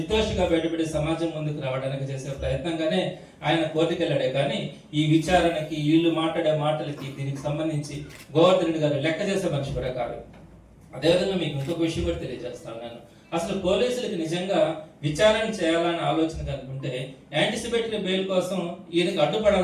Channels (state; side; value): identical; both; correlation 1.00